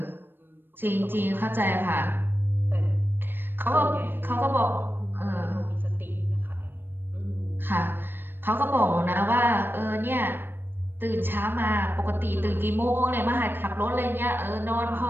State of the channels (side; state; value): left; late; 0.097 ms